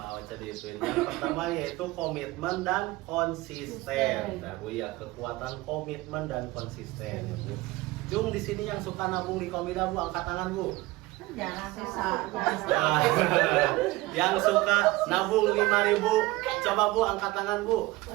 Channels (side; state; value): left; quieter; 20.0 dB